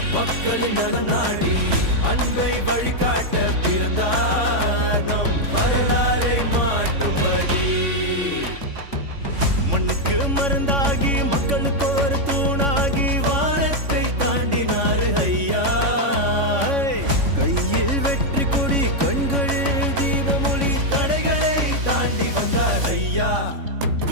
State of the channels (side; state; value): left; late; 3.5 ms